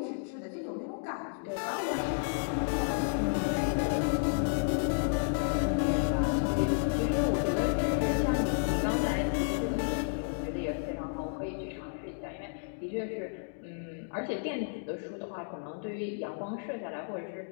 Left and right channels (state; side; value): silent; right; digital silence